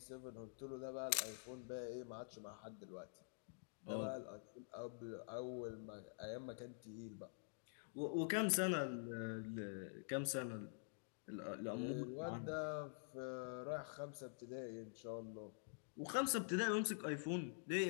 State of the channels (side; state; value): right; silent; digital silence